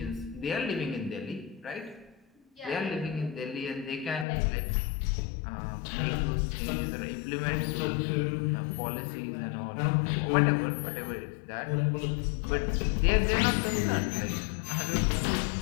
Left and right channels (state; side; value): drops out; right; at 4.2 s